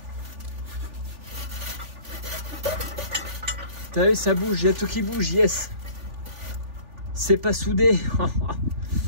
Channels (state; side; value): late; left; 3.4 ms